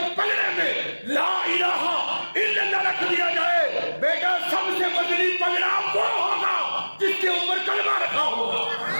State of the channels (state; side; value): inverted; both; correlation -1.00